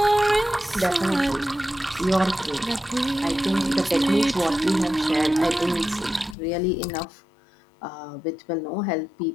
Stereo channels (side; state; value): right; drops out; at 6.4 s